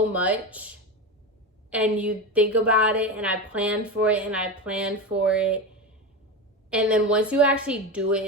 much, and you think about it, and I planned for it, and I planned for it. And then once you actually do it,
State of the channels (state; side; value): normal; both; correlation 0.20